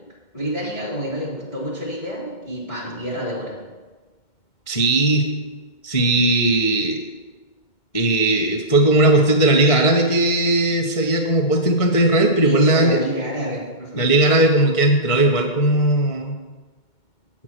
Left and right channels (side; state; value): right; late; 2.2 ms